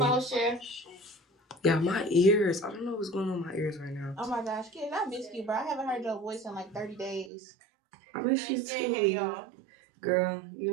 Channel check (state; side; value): drops out; left; at 7.3 s